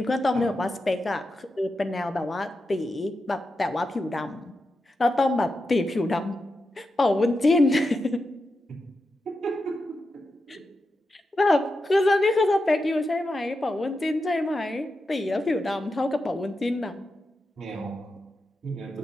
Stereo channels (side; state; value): both; normal; correlation 0.89